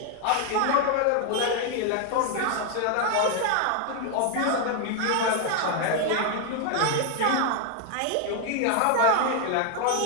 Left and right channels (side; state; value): both; different; correlation 0.00